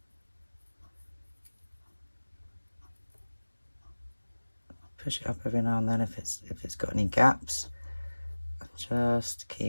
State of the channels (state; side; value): inverted; both; correlation -1.00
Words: Push it up every now and then if it's got any gaps. Just